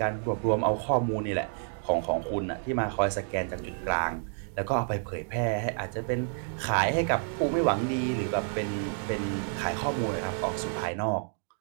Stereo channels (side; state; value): left; silent; digital silence